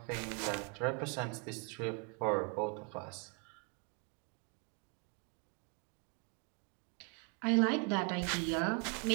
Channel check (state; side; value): quieter; left; 35.9 dB